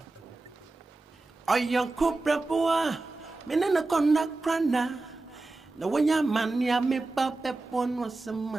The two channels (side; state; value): left; quieter; 3.3 dB